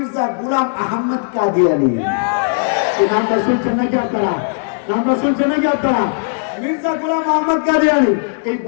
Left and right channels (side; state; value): right; silent; digital silence